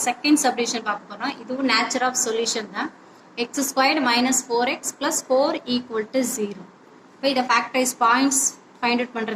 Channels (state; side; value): identical; both; correlation 1.00